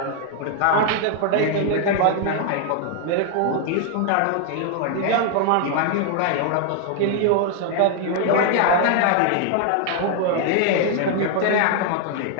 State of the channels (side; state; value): both; different; correlation 0.00